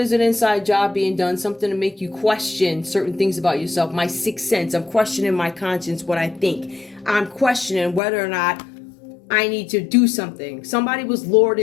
an inside job being done, something to make you question certain things about yourself. My sixth sense, I'm questioning my conscience, what I think. I'm questioning whether or not I need to do something. Somebody was lured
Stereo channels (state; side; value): drops out; right; at 8.0 s